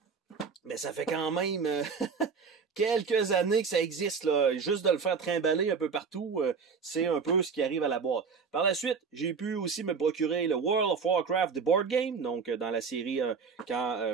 mais ça fait quand même quelques années que ça existe, là. Juste de le faire trimballer un peu partout, c'est un peu ce qui arrive à la boîte. Par la suite, j'ai pu aussi me procurer le World of Warcraft The Board Game, donc dans la série quand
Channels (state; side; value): quieter; left; 5.5 dB